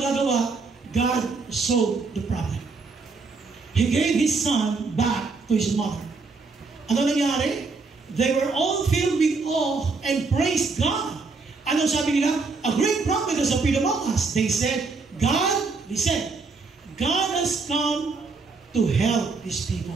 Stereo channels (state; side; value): quieter; left; 4.2 dB